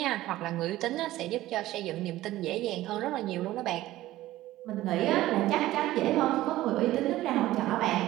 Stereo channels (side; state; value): left; quieter; 15.8 dB